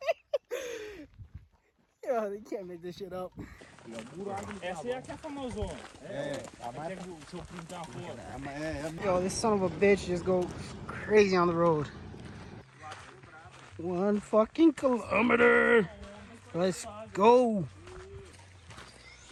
Yo, they can't make this shit up. Essa é a que é famosona. Até que o seu primo tá fora. Yo, this son of a bitch just go crazy on the road. 1 fucking kilometer. Let's go.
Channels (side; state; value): both; identical; correlation 1.00